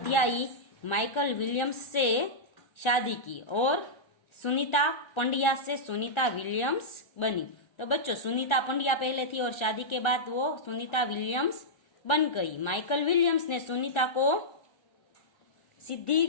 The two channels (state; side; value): late; right; 1.4 ms